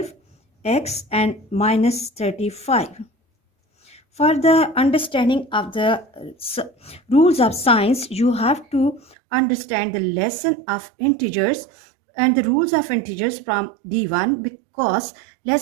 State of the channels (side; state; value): left; drops out; at 9.2 s